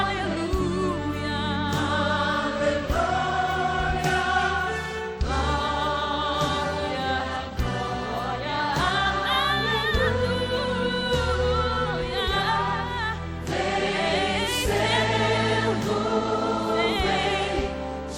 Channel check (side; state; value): both; identical; correlation 1.00